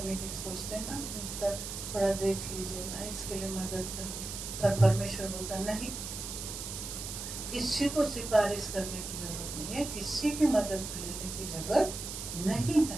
की सोचते हैं ना, इसका थोड़ा देख लीजिए ना, इसके लिए मदद कर दो, पर परमेश्वर बोलता नहीं, किसी को सिफारिश करने की जरूरत नहीं है, किसी की मदद लेने की जरूरत नहीं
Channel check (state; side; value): noise; right; hiss, 7 dB below the sound